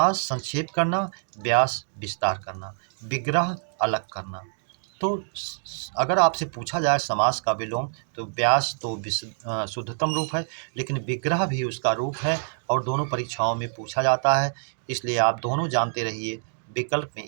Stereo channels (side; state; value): left; silent; digital silence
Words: संक्षेप करना, व्यास विस्तार करना, विग्रह अलग करना। तो अगर आपसे पूछा जाए समास का विलोम, तो व्यास तो शुद्धतम रूप है, लेकिन विग्रह भी उसका रूप है और दोनों परीक्षाओं में पूछा जाता है, इसलिए आप दोनों जानते रहिए। विकल्प में